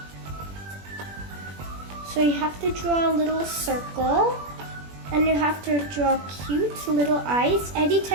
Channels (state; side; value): late; left; 21 ms